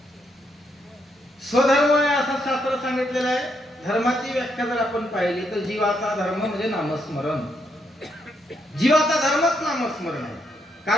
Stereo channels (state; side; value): normal; both; correlation 0.76